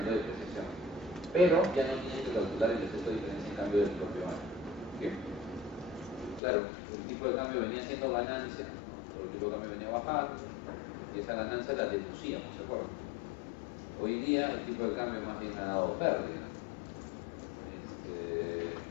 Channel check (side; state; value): right; drops out; at 6.4 s